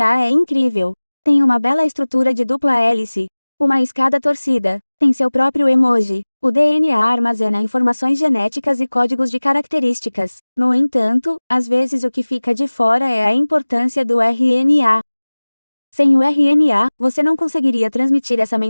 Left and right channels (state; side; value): inverted; both; correlation -1.00